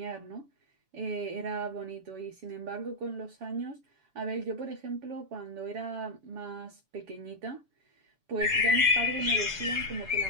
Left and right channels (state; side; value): late; left; 7.0 ms